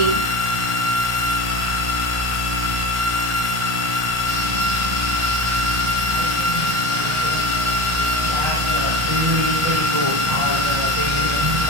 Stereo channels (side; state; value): left; late; 1.3 ms